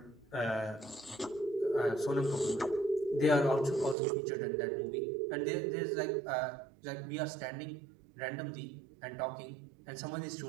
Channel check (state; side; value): drops out; left; at 4.0 s